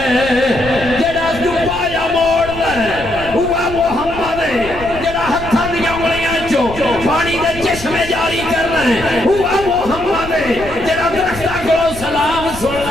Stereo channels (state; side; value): noise; left; rumble, 13 dB below the sound